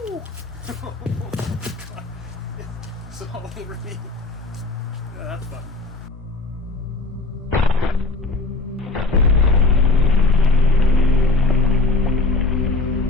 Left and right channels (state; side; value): quieter; right; 3.5 dB